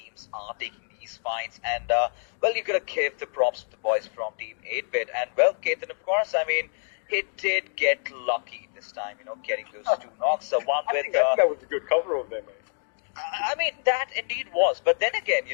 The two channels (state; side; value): silent; right; digital silence